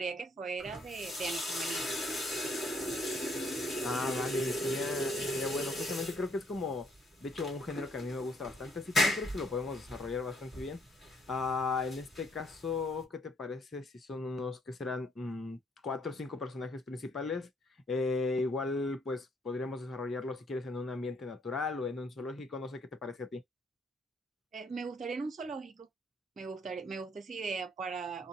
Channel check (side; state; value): both; normal; correlation 0.68